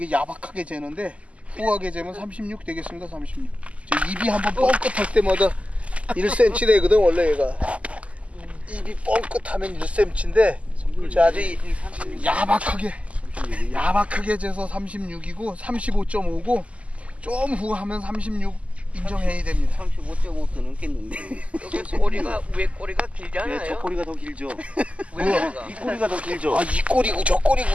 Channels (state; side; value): late; left; 0.064 ms